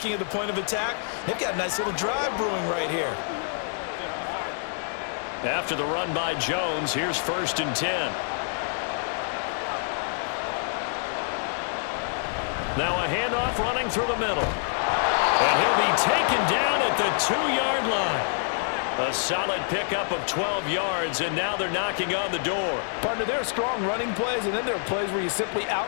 at the point of attack. They've got a nice little drive brewing right here. After the run by Jones, here's 1st and 10. Now a handoff running through the middle. And he'll be taken down at the 2-yard line. A solid pickup of 12 yards, and now they're knocking on the door. Partner, there are strong running plays, and then there are plays where you simply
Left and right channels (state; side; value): silent; right; 61 dB below the other